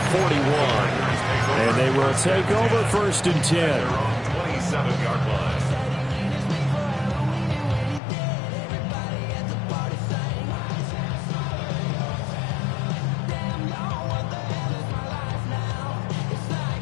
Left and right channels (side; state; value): right; drops out; at 8.0 s